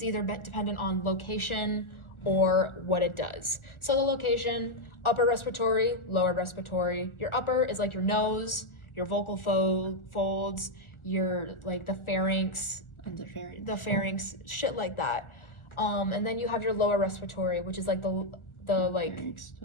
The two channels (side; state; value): right; late; 1.4 ms